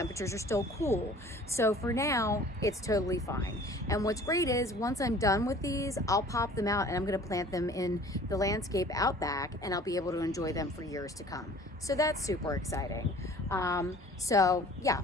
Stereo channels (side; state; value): both; normal; correlation 0.48